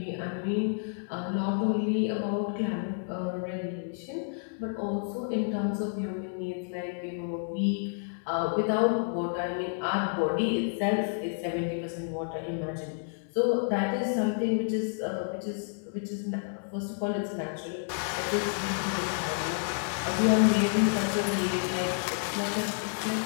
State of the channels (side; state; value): right; silent; 58 dB below the other